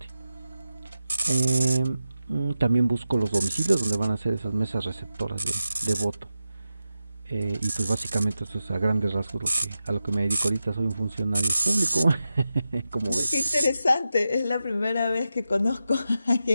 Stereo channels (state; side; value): inverted; both; correlation -0.91